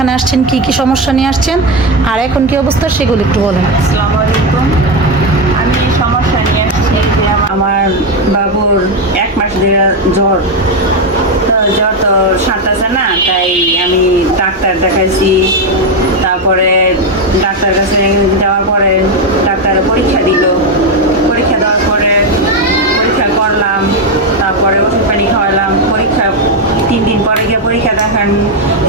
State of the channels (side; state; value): both; normal; correlation 0.09